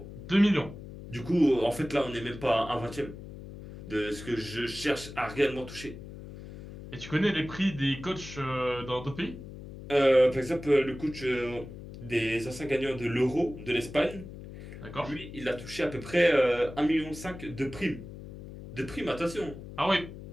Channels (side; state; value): left; noise; hum, 13 dB below the sound